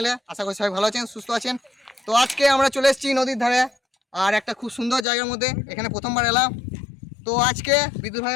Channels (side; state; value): right; drops out; at 5.1 s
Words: আশা করি সবাই ভালো আছেন, সুস্থ আছেন। তো আজকে আমরা চলে এসেছি নদীর ধারে, আর একটা খুব সুন্দর জায়গার মধ্যে। এখানে প্রথমবার এলাম। তো আজকে বিদ্যুৎ